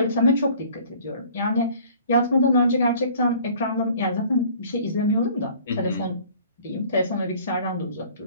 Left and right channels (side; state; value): both; inverted; correlation -0.51